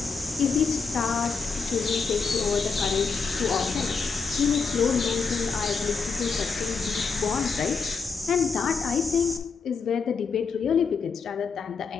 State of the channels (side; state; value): right; quieter; 5.2 dB